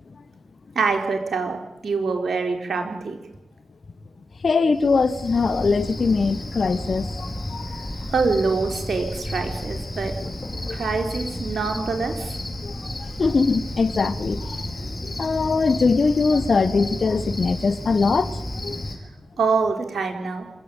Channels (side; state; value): both; normal; correlation 0.88